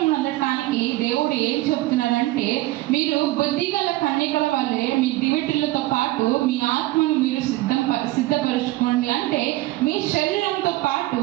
నొందటానికి దేవుడు ఏం చెప్తున్నాడంటే, మీరు బుద్ధిగల కన్యకల వల్లే మీ దివిటీలతో పాటు మీ ఆత్మను మీరు సిద్ధపరచుకోండి. అంటే మీ శరీరంతో పాటు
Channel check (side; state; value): left; quieter; 18.1 dB